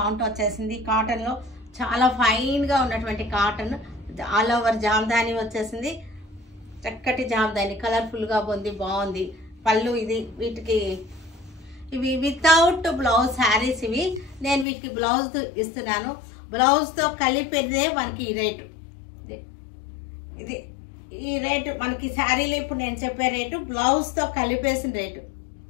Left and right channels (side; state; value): right; drops out; at 14.7 s